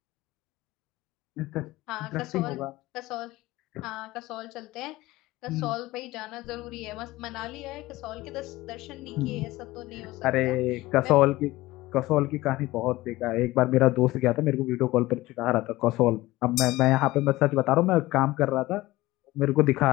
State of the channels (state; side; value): quieter; right; 18.3 dB